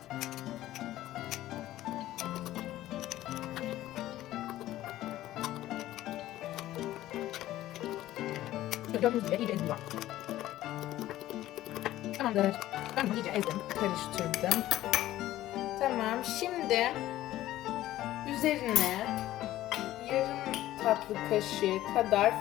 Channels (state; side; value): quieter; right; 14.6 dB